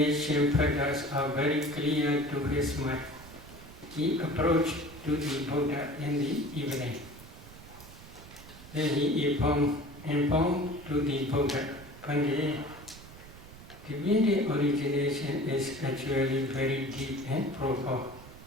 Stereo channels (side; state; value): right; noise; rumble, 18 dB below the sound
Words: patterns are very clear to his mind. He approached to the Buddha in the evening. Then he informed to the Buddha, Pandit, dependent origination is actually very deep and profound.